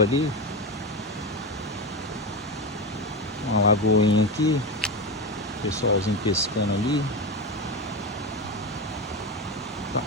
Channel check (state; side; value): normal; both; correlation 0.17